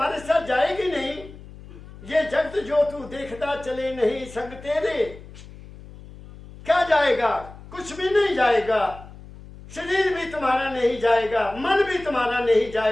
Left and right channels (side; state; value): left; noise; hum, 18 dB below the sound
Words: साथ जाएगी नहीं, ये जगत जो तू देखता चले नहीं संग तेरे, क्या जाएगा? कुछ भी नहीं जाएगा। शरीर भी तुम्हारा नहीं जाएगा, मन भी तुम्हारा नहीं